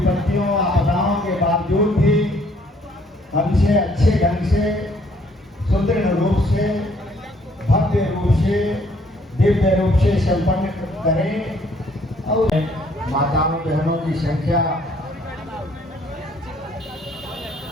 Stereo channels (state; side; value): normal; both; correlation 0.64